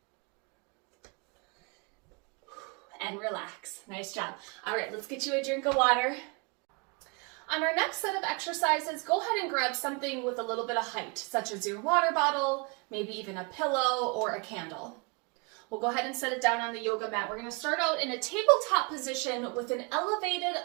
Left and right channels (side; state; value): left; quieter; 31.6 dB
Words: And relax. Nice job. All right, let's get you a drink of water. On our next set of exercises, go ahead and grab something with a little bit of height, such as your water bottle, maybe even a pillow or a candle. We'll go ahead and set it down on the yoga mat. We're going to start out in a tabletop position with an elevated